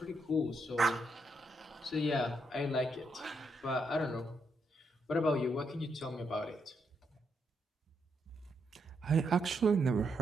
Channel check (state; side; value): normal; both; correlation 0.79